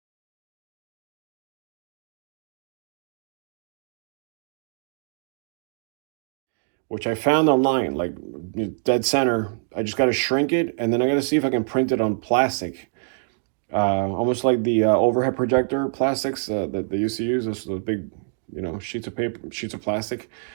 which I found online, like dead center. I just got to shrink it, and then I got to see if I can print it on plastic, almost like the overhead projector plastics that they used to use. Those big, you know, sheets of paper, sheets of plastic,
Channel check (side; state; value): left; silent; digital silence